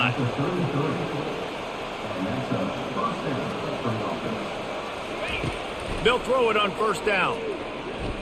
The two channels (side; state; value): both; identical; correlation 1.00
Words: They'll throw it on 1st down.